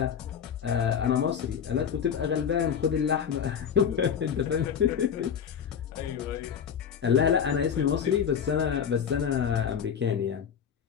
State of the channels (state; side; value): quieter; right; 7.8 dB